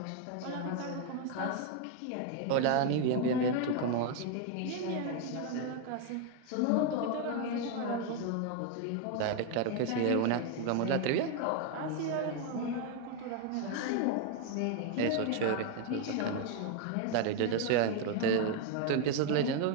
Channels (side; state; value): both; different; correlation 0.01